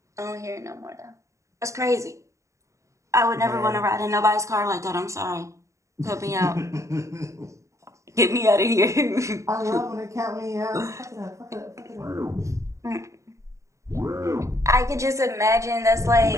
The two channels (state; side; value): late; left; 0.15 ms